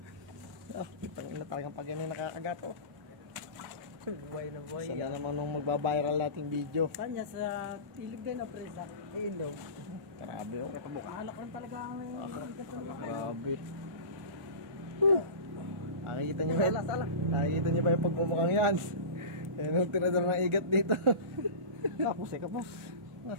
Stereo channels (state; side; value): late; left; 1.4 ms